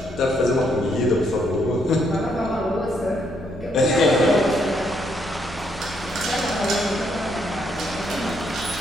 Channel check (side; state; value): left; noise; rumble, 28 dB below the sound